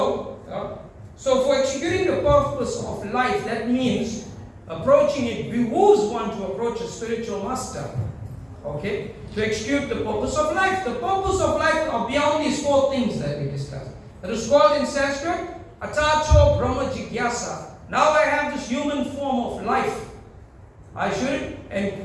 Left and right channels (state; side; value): identical; both; correlation 1.00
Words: for executing the purpose of life, that means approaching it behooves one to approach a spiritual master. Okay, to execute the purpose of life. The purpose of life are beyond these 4 things that we discussed. It is called in Sanskrit, Atacho Brahma Jigyasa. Now I have this human form of life. I should